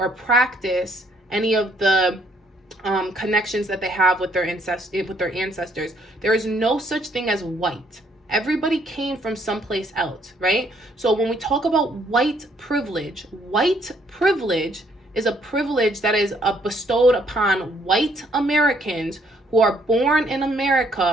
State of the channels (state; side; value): normal; both; correlation 0.67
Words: practice any of the connections that they have with their ancestors. There is no such thing as white. Everybody came from someplace else, right? So when we talk about white privilege is a privilege that is bestowed upon white Americans who are born in